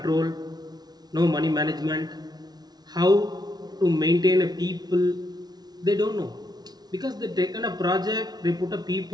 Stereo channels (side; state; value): left; late; 0.19 ms